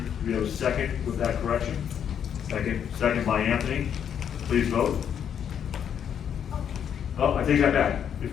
Do we have a second with that correction? Second by Anthony. Please vote. Oh, I take that back.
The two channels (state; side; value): quieter; right; 8.6 dB